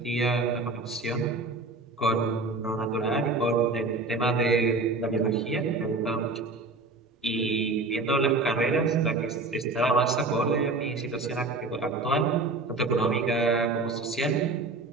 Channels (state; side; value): quieter; left; 3.5 dB